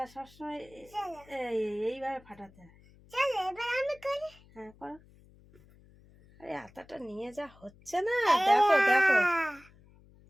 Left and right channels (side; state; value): left; noise; hum, 26 dB below the sound